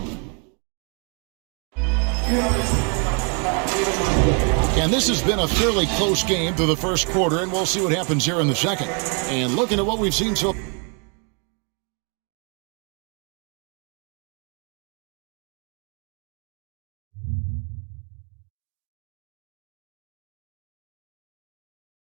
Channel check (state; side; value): quieter; left; 37.9 dB